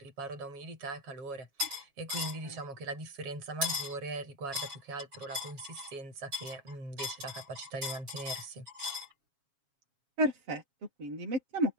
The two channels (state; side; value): late; left; 7.2 ms